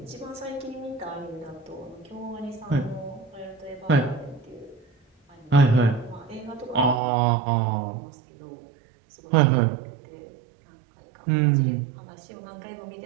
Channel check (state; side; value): drops out; left; at 7.0 s